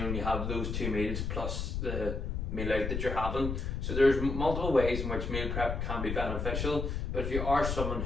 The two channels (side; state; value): left; noise; rumble, 2 dB below the sound